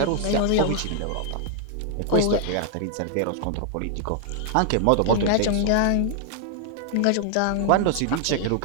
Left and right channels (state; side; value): different; both; correlation 0.00